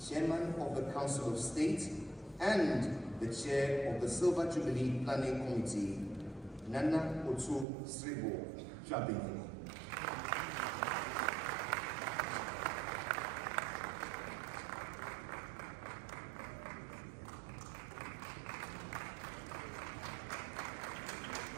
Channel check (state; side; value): drops out; left; at 7.7 s